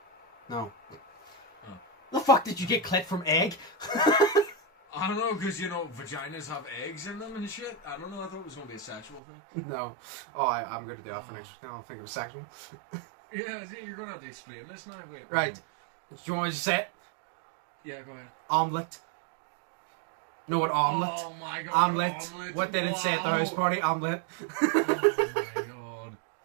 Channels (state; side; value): drops out; left; at 9.2 s